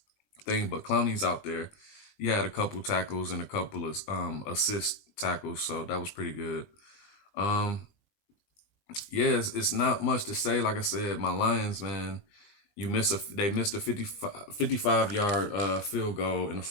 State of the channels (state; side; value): late; right; 20 ms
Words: thing, but Clowney's out there. He had a couple tackles and a couple of assist tackles, so that was pretty good. Um, yeah, it's not much to say. Like I said, my Lions, man, they missed a 55 yard field goal in the